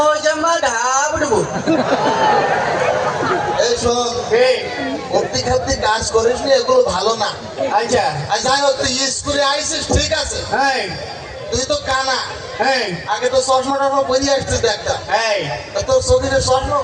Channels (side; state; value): both; identical; correlation 1.00